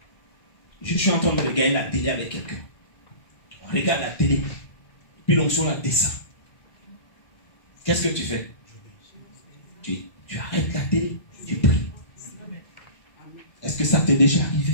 Je suis en train de regarder la télé avec quelqu'un. On regarde la télé. Puis l'onction la descend. Qu'est-ce que tu fais? Tu arrêtes la télé. Tu pries. Est-ce que ça t'est déjà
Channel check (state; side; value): late; right; 1.5 ms